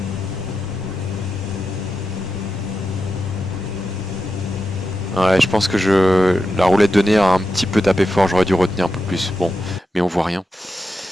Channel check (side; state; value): both; normal; correlation 0.89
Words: Ouais, je pense que la roulette de nez a un petit peu tapé fort, j'aurais dû retenir un peu plus. Bon, mais on voit rien.